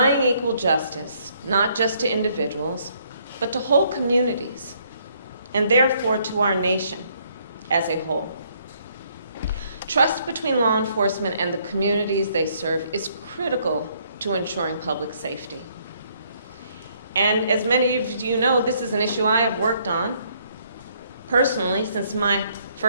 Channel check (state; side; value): inverted; both; correlation -0.68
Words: equal justice, not just to individuals, but to whole communities, and therefore to our nation as a whole. Trust between law enforcement and the communities they serve is critical to ensuring public safety. And as many of you know, this is an issue I have worked on personally since my